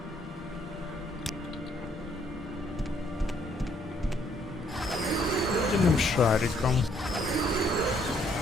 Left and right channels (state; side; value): normal; both; correlation 0.68